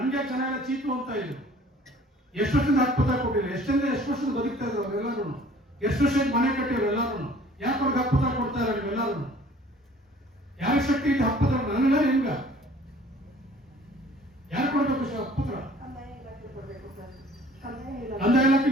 ಜನ ಎಲ್ಲ ಚೀಪು ಅಂತ ಇದ್ರು. ಎಷ್ಟು ವರ್ಷದಿಂದ ಹಕ್ಕುಪತ್ರ ಕೊಟ್ಟಿಲ್ಲ? ಎಷ್ಟು ವರ್ಷದ ಬದುಕ್ತಾ ಇದ್ರು ಅವರೆಲ್ಲರೂ? ಎಷ್ಟು ವರ್ಷಕ್ಕೆ ಮನೆ ಕಟ್ಟಿದ್ರು ಎಲ್ಲರೂ? ಯಾಕೆ ಅವ್ರಿಗೆ ಹಕ್ಕುಪತ್ರ ಕೊಡ್ತಾ ಇರೋ ನೀವೆಲ್ಲರೂ? ಯಾರ ಶಕ್ತಿ ಇದೆ ಹಕ್ಕುಪತ್ರ? ನನಗ ನಿಮ್ಗ ಯಾರು ಕೊಡ್ಬೇಕು ಹಕ್ಕುಪತ್ರ? ಕಂದಾಯ ಇಲಾಖೆ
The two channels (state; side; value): normal; both; correlation 0.52